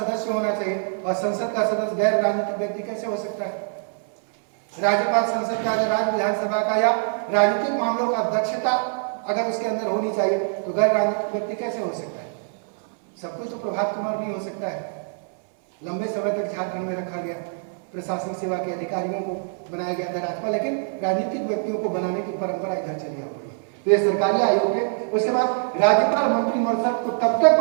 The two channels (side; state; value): left; silent; 62 dB below the other